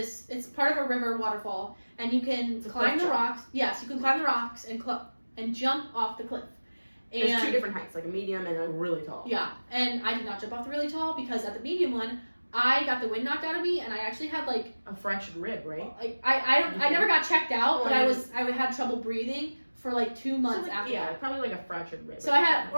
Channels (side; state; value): both; inverted; correlation -1.00